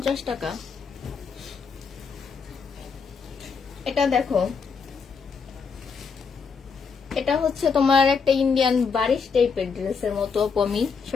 টাকা। এটা দেখো, এটা হচ্ছে তোমার একটা ইন্ডিয়ান বারিশ টাইপের ড্রেসের মতো, আমি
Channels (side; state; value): right; quieter; 5.6 dB